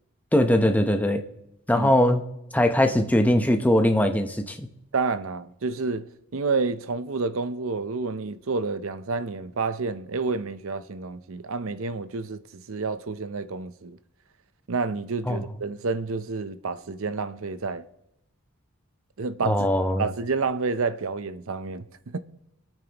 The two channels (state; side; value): normal; both; correlation 0.49